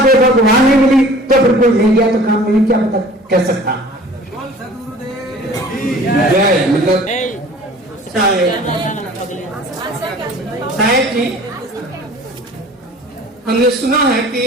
देखो तो वहां नहीं मिली, तो फिर कोई ले गया तो काम नहीं, क्या पता कह सकता। मतलब साहेब जी, हमने सुना है कि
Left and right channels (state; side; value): normal; both; correlation 0.47